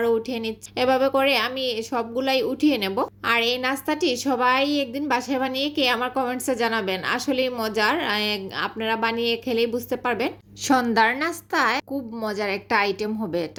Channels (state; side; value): identical; both; correlation 1.00